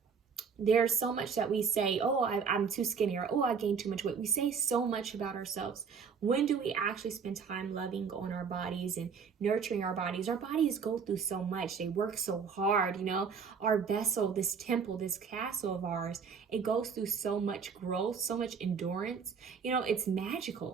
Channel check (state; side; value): quieter; left; 6.1 dB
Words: There's so much that we say, oh, I'm too skinny, or, oh, I gained too much weight. We say so much about ourselves. When do we actually spend time loving on our bodies and nurturing our bodies? Our bodies go through so much. They work so hard, you know. Our vessel, this temple, this castle of ours, it goes through so much growth, so much endurance. You know, it's